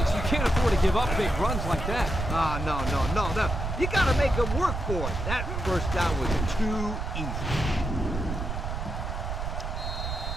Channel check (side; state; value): right; noise; rumble, 3 dB below the sound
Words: you can't afford to give up big runs like that. No. You got to make them work for it. That first down was too easy.